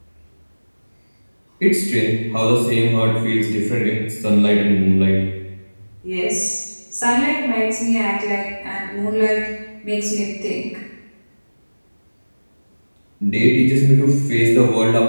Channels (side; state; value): both; inverted; correlation -1.00